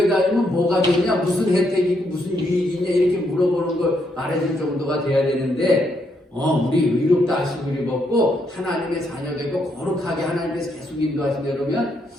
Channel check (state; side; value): normal; both; correlation 0.76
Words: 다니면 뭐가 되냐 무슨 혜택이고 무슨 유익이 있냐 이렇게 물어보는 걸 말해줄 정도가 돼야 되는데 우리 의롭다 하시고 우리 먹고 하나님의 자녀 되고 거룩하게 하나님께서 계속 인도하시네 그러면